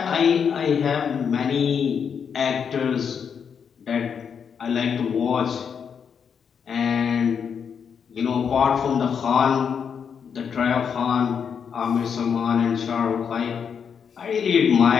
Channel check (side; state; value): right; quieter; 7.0 dB